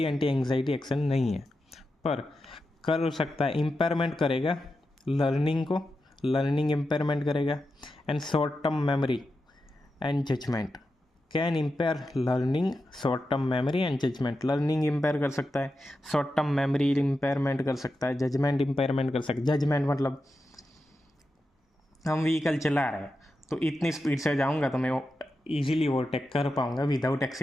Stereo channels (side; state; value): both; normal; correlation 0.89